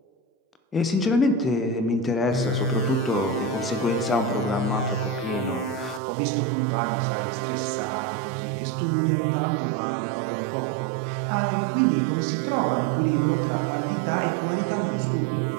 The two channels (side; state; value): left; drops out; at 6.0 s